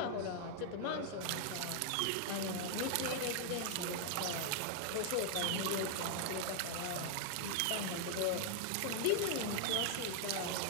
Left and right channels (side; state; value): both; different; correlation -0.01